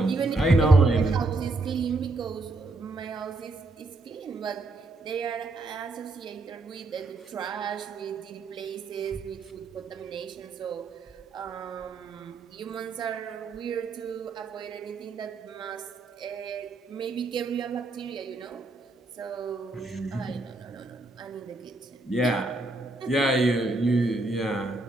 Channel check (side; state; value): left; quieter; 3.2 dB